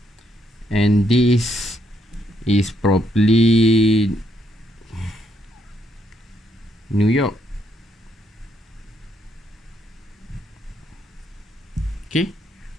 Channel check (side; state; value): both; normal; correlation 0.75